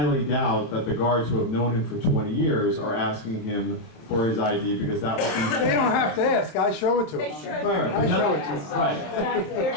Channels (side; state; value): right; late; 26 ms